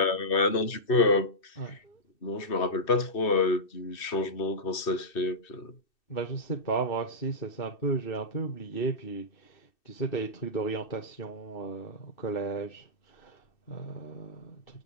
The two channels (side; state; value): right; late; 2.6 ms